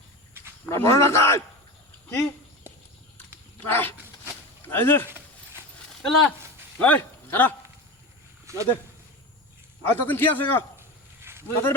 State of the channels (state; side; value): normal; both; correlation 0.25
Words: বড় না কাজ কি এই যে এলা এই খারা না দে আর তখন কি আছে গো তাদের